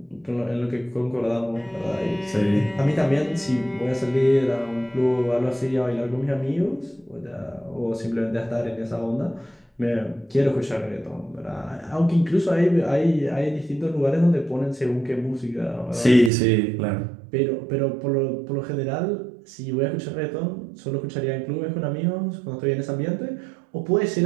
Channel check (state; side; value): drops out; left; at 16.3 s